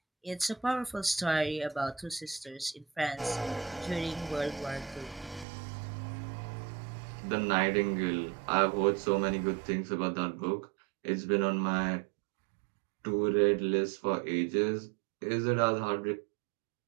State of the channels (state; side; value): drops out; left; at 5.5 s